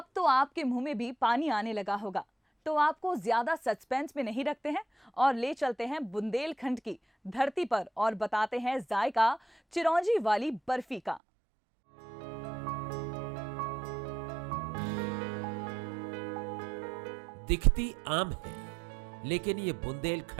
तो आपके मुंह में भी पानी आने लगा होगा, तो आपको ज्यादा सस्पेंस में नहीं रखते हैं और ले चलते हैं बुंदेलखंड की धरती पर और बताते हैं जायका चिरौंजी वाली बर्फी का। दिखती आम है, लेकिन ये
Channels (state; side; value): drops out; left; at 11.2 s